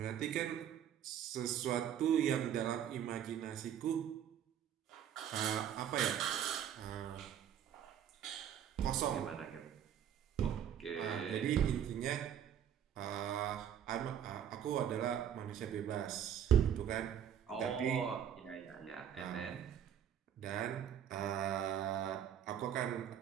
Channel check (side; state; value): left; quieter; 9.4 dB